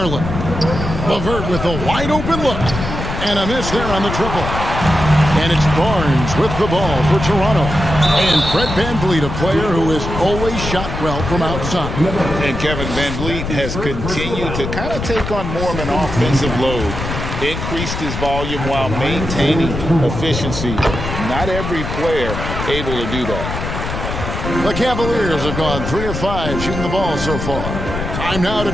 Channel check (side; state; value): left; noise; rumble, 5 dB below the sound